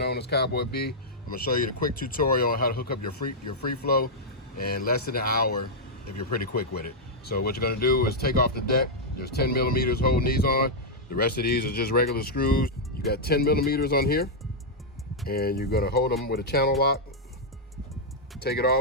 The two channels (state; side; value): normal; both; correlation -0.06